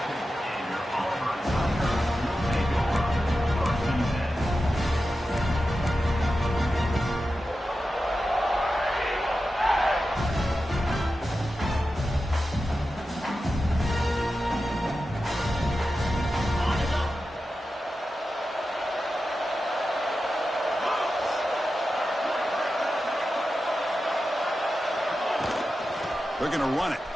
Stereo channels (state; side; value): normal; both; correlation 0.92